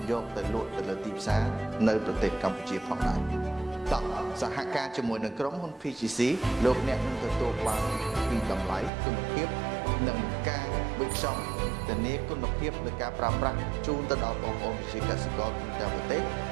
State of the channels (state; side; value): drops out; left; at 8.9 s